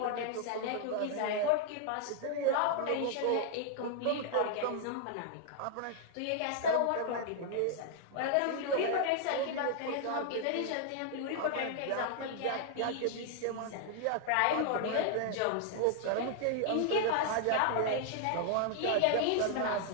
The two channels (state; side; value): different; both; correlation 0.00